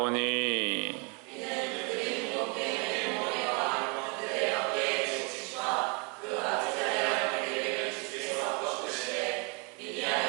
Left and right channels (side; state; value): left; quieter; 33.1 dB